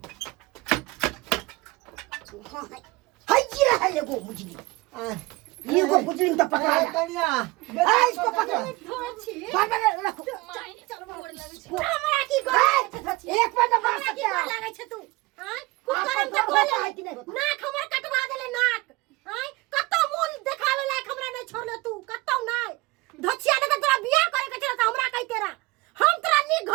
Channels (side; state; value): left; quieter; 22.3 dB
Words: कहाँ है? हाय ये है ये वो मुजलू। ये को मुजलिम तो पकड़ा है। कन्या इसको पकड़ो। बाबा रखो। हमरा की गोल एक पर मार सकते हैं। लागे छ तू हां कुकरम के गोल नाक हमर कटवा देले नाक हां कत्तो मूल देखावे लायक हमरा नहीं छोड़ले तू कत्तो नहीं धछिया ने तोरा बियाह करे के छला त हमरा कहि तेरा हम तोरा नी